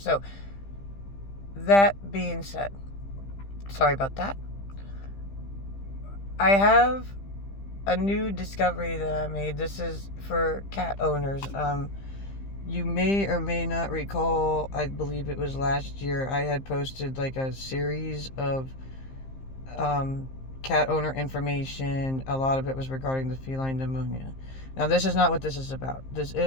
that being said, sorry about that. I have a new discovery that I made. This is for cat owners. You may or may not recall, I believe it was last year, I had posted like a series of cat owner information. A lot of it was regarding the feline pneumonia. Now, this is not what this is about. This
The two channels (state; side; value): late; right; 15 ms